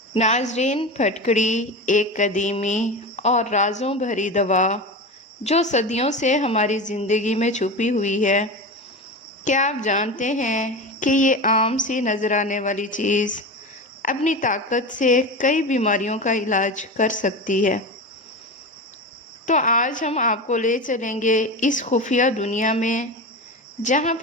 ناظرین، پھٹکڑی ایک قدیمی اور رازوں بھری دوا جو صدیوں سے ہماری زندگی میں چھپی ہوئی ہے۔ کیا آپ جانتے ہیں کہ یہ عام سی نظر آنے والی چیز اپنی طاقت سے کئی بیماریوں کا علاج کر سکتی ہے؟ تو آج ہم آپ کو لے چلیں گے اس خفیہ دنیا میں جہاں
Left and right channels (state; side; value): normal; both; correlation 0.25